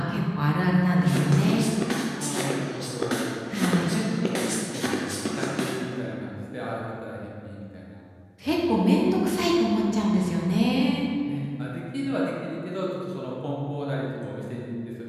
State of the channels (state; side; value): identical; both; correlation 1.00